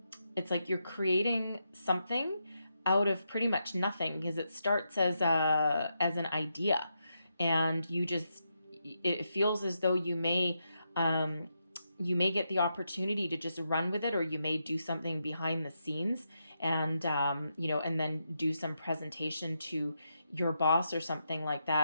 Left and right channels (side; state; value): both; inverted; correlation -0.83